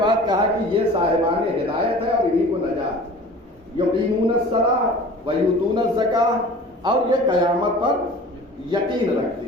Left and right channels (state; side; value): normal; both; correlation 0.42